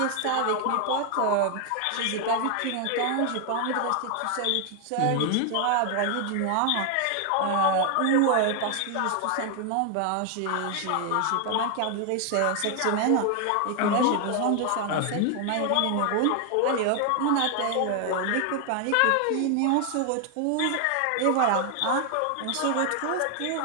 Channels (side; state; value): both; different; correlation 0.00